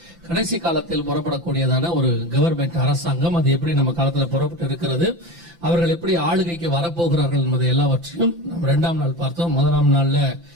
கடைசி காலத்தில் புறப்படக்கூடியதான ஒரு கவர்மெண்ட் அரசாங்கம், அது எப்படி நம்ம காலத்துல புறப்பட்டு இருக்கிறது, அவர்கள் எப்படி ஆளுகைக்கு வரப்போகிறார்கள் என்பதை எல்லாவற்றையும் நம்ம 2ஆம் நாள் பார்த்தோம். முதலாம் நாள்ல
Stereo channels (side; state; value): left; late; 5.9 ms